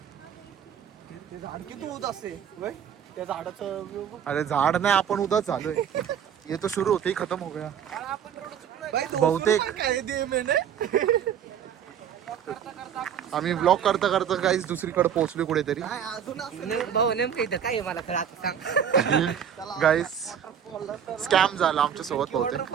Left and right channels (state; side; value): quieter; left; 8.5 dB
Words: झाड किती होत असते त्या झाडाचं अरे झाड नाही आपण उदाच झालोय ये तो शुरू होते ही खत्म हो गया आपण रोड चुकलोय बहुतेक आम्ही ब्लॉग करता करता काहीच दुसरीकडे पोहोचलो कुठेतरी. भाऊ नेमकं इथं काय आहे मला खरं आता सांग. गाईस स्कॅम झाला आमच्या सोबत बहुतेक.